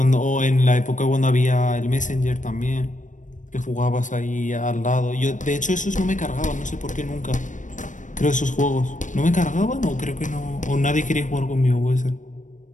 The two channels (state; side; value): late; right; 0.37 ms